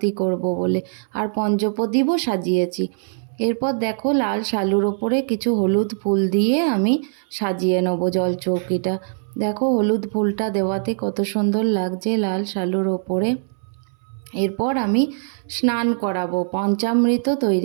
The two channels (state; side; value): silent; left; 62 dB below the other